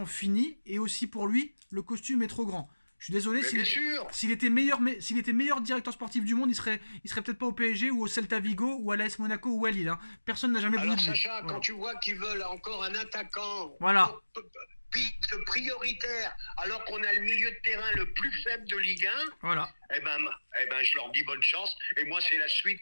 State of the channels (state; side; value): inverted; both; correlation -1.00